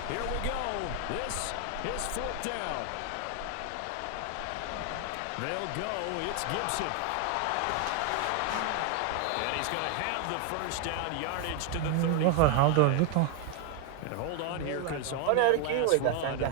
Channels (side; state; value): both; different; correlation 0.01